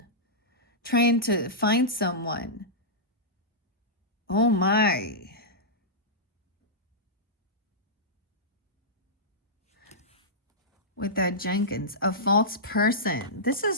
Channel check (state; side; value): normal; both; correlation -0.14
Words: trying to find someone. Oh my. With that Jenkins, a false person. This